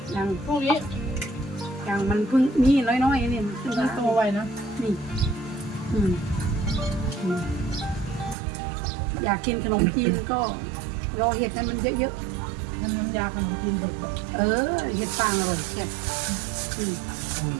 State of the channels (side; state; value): left; drops out; at 8.3 s